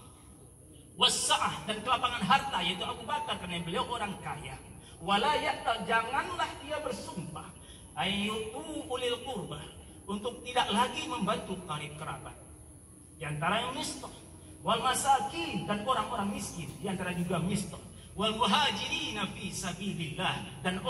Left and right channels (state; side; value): identical; both; correlation 1.00